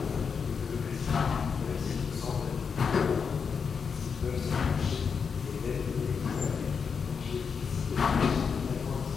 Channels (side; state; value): right; quieter; 6.0 dB